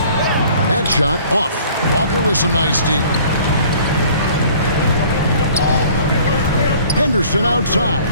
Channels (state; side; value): inverted; both; correlation -0.52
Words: shot off. Walker with some nice D. Henderson outside.